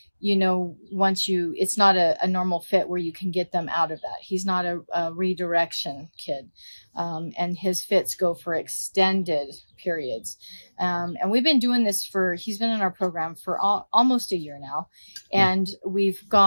it's not a normal fit where you can get them out of that. He's not a redirection kid. And his fits go for extended periods. And we've been doing this he's been in our program for almost a year now. And we've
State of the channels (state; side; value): inverted; both; correlation -1.00